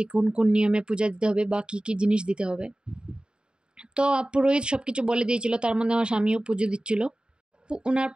কোন কোন নিয়মে পূজা দিতে হবে বা কী কী জিনিস দিতে হবে। তো পুরোহিত সব কিছু বলে দিয়েছিল। তার মধ্যে আমার স্বামীও পুজো দিচ্ছিল। ওনার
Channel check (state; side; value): late; left; 0.049 ms